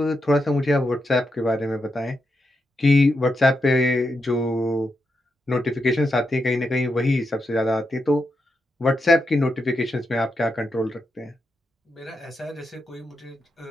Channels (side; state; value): both; normal; correlation 0.85